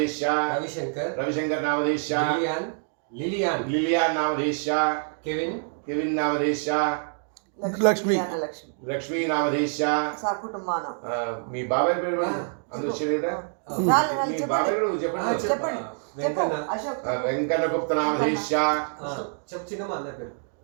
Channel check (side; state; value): left; silent; 61 dB below the other